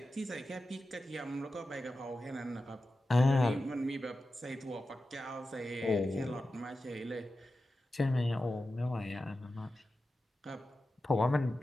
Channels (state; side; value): normal; both; correlation 0.93